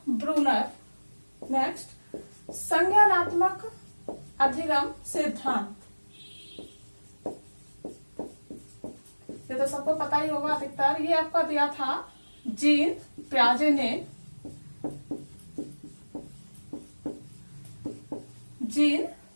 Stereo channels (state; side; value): inverted; both; correlation -1.00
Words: Bruner. नेक्स्ट संज्ञानात्मक अधिगम सिद्धांत, ये तो सबको पता ही होगा अधिकतर। ये आपका दिया था जीन प्याजे ने। जीन